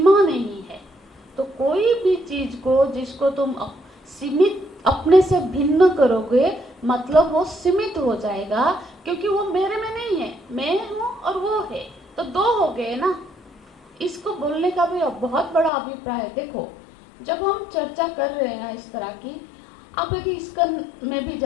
नहीं है। तो कोई भी चीज को जिसको तुम सीमित, अपने से भिन्न करोगे, मतलब वो सीमित हो जाएगा, क्योंकि वो मेरे में नहीं है, मैं हूँ और वो है, तो दो हो गए ना। इसको बोलने का भी बहुत बड़ा अभिप्राय है। देखो, जब हम चर्चा कर रहे हैं ना इस तरह की, आप यदि इस्कन में भी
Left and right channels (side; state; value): right; drops out; at 15.7 s